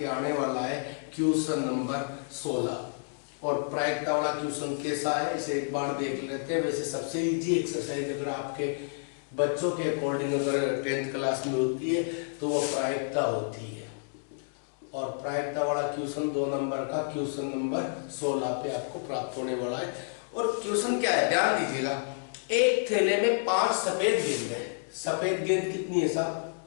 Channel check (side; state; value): right; silent; digital silence